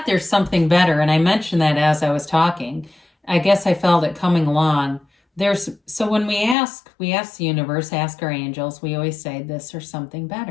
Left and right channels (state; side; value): drops out; right; at 6.6 s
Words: there's something better, and I mentioned that as I was talking. I guess I felt it coming along. So when we ask the universe, ask our angels, we always say this or something